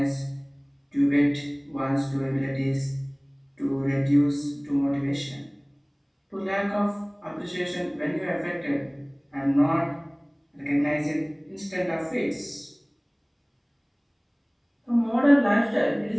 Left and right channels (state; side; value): identical; both; correlation 1.00